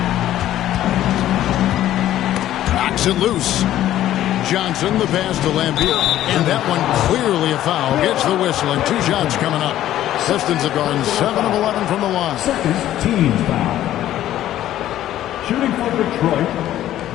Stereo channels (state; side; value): quieter; right; 12.9 dB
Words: Knocks it loose. Johnson, the pass to Laimbeer. And that one clearly a foul. Gets the whistle, and 2 shots coming up. Pistons have gone 7 of 11 from the line. Second team foul. Shooting for Detroit,